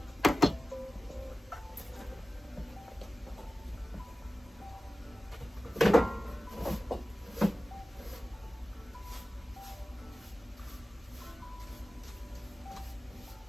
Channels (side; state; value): both; normal; correlation 0.96